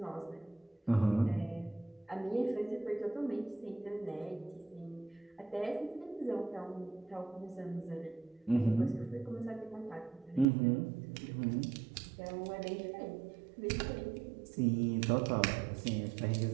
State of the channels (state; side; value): drops out; left; at 10.5 s